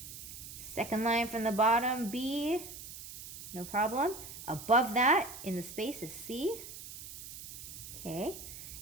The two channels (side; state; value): right; noise; hiss, 12 dB below the sound